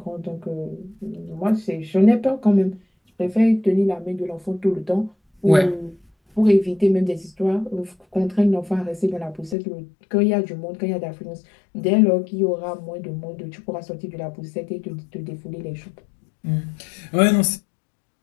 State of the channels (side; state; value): right; drops out; at 9.6 s